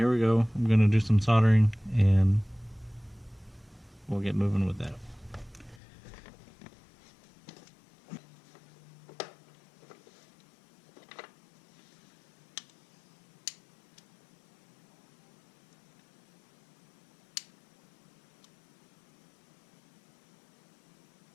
we go. I'm going to do some soldering and we'll get moving with that.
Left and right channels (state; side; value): drops out; right; at 5.8 s